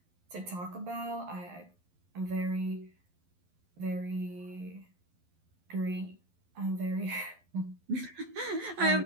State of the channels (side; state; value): left; late; 11 ms